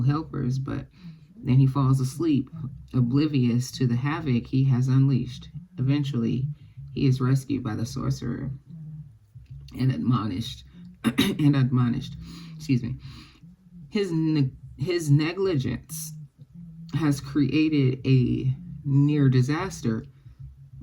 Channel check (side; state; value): both; identical; correlation 1.00